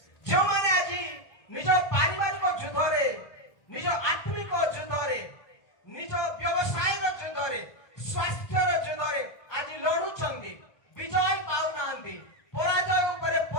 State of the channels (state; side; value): late; right; 1.2 ms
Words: ଯେଉଁମାନେ ଆଜି ନିଜ ପାରିବାରିକ ଯୁଦ୍ଧରେ, ନିଜ ଆତ୍ମିକ ଯୁଦ୍ଧରେ, ନିଜ ବ୍ୟବସାୟର ଯୁଦ୍ଧରେ, ସ୍ୱାସ୍ଥ୍ୟର ଯୁଦ୍ଧରେ ଆଜି ଲଢୁଛନ୍ତି, ବିଜୟ ପାଉନାହାନ୍ତି, ପରାଜୟ ଉପରେ